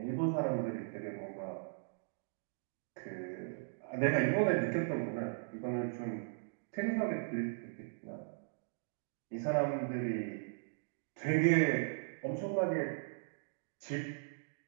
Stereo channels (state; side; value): silent; left; digital silence